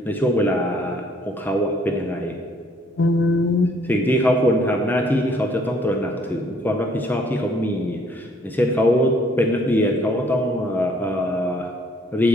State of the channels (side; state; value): both; normal; correlation 0.62